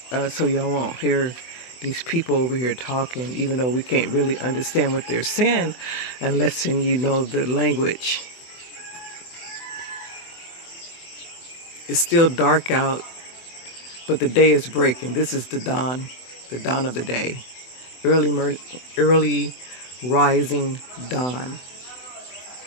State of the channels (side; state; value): right; late; 24 ms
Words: so y'all won't hear these people over here talking, even though we can't really understand what they're saying unless you know the language. It's still dark out, but the day is breaking. This is the dawn of the day. Early rising dawn.